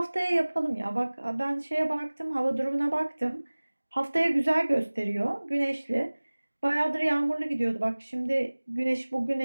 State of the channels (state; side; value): inverted; both; correlation -1.00